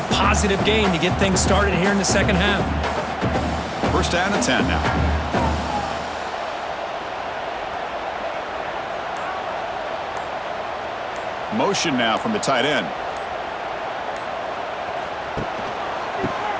positive gain to get things started here in the second half. First down and 10 now. Motion now from the tight end.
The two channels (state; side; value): identical; both; correlation 1.00